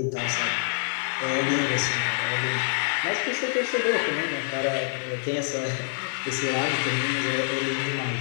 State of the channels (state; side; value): silent; right; digital silence